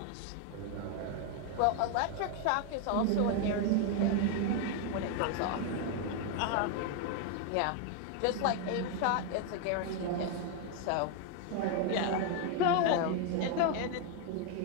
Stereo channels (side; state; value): both; different; correlation 0.01